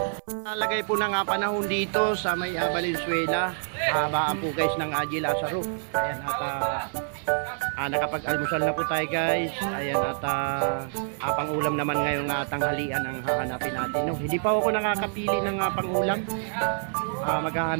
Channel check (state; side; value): silent; left; 59 dB below the other